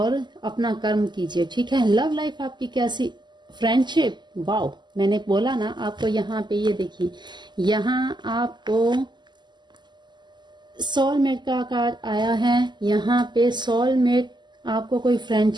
अपना कर्म कीजिए, ठीक है। लव लाइफ आपकी कैसी, फ्रेंडशिप, वाओ, मैंने बोला ना आपको। यहाँ पे ये देखिए, यहाँ आपको सोलमेट का कार्ड आया है। यहाँ पे सोलमेट, आपको कोई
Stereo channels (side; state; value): left; late; 0.21 ms